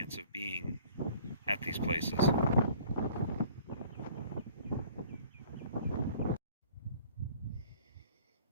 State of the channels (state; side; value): inverted; both; correlation -0.53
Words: of being at these places.